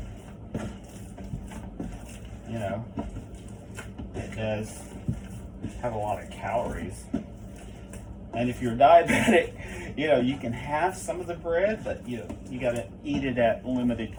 it does have a lot of calories. And if you're diabetic, you can have some of the bread, but you got to eat it at limited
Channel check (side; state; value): both; identical; correlation 1.00